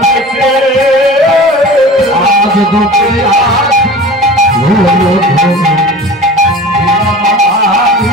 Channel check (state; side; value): normal; both; correlation 0.38